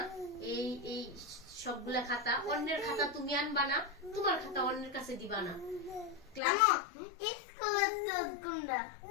এই এই সবগুলা খাতা, অন্যের খাতা তুমি আনবা না, তোমার খাতা অন্যের কাছে দিবা না। ক্লাস স্কুলের তো কোনটা?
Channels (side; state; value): right; drops out; at 6.4 s